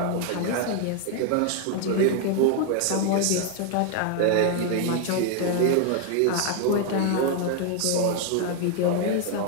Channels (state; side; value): different; both; correlation 0.00